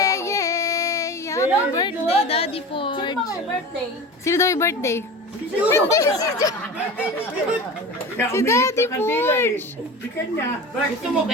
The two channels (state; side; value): normal; both; correlation 0.32